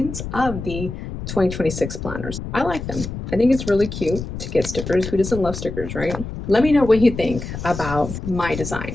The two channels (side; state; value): left; noise; rumble, 8 dB below the sound